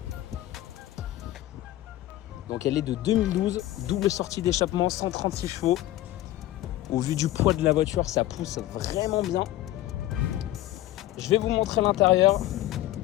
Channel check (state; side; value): quieter; right; 15.0 dB